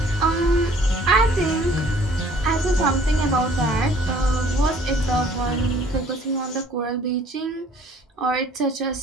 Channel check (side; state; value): both; normal; correlation 0.55